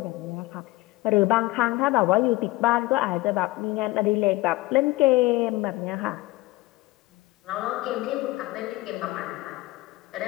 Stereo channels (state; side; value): quieter; right; 20.0 dB